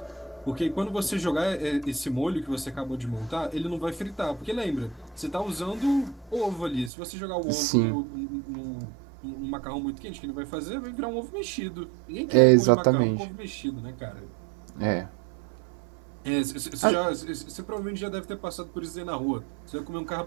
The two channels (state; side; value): drops out; left; at 6.9 s